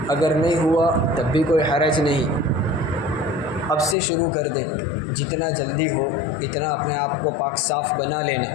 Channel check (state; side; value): drops out; right; at 4.0 s